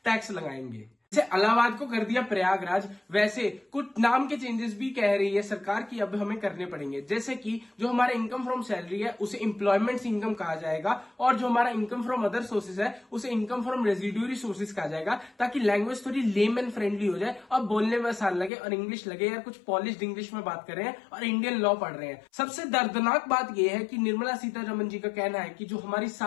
टैक्स लगाएंगे। जैसे इलाहाबाद को कर दिया प्रयागराज, वैसे कुछ नाम के चेंजेस भी कह रही है सरकार की अब हमें करने पड़ेंगे। जैसे कि जो हमारा इनकम फ्रॉम सैलरी है उसे एम्प्लॉयमेंट इनकम कहा जाएगा, और जो हमारा इनकम फ्रॉम अदर सोर्सेज है उसे इनकम फ्रॉम रेजिड्यूरी सोर्सेज कहा जाएगा, ताकि लैंग्वेज थोड़ी लेम एंड फ्रेंडली हो जाए और बोलने में आसान लगे और इंग्लिश लगे यार कुछ पॉलिश्ड इंग्लिश में बात कर रहे हैं और इंडियन लॉ पढ़ रहे हैं। सबसे दर्दनाक बात यह है कि निर्मला सीतारमण जी का कहना है कि जो हमारी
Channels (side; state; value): right; drops out; at 18.5 s